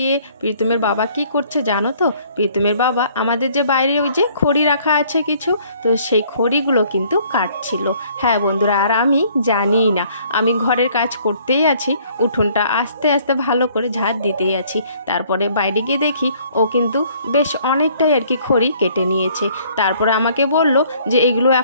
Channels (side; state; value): both; inverted; correlation -0.60